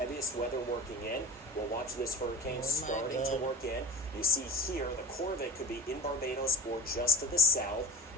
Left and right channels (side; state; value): both; normal; correlation 0.37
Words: weather working in. We'll watch this hurricane starting to work in. You see here, the core of it could be in Barbados or just to the south